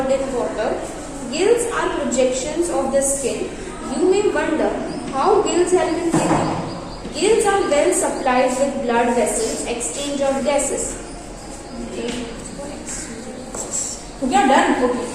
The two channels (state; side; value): identical; both; correlation 1.00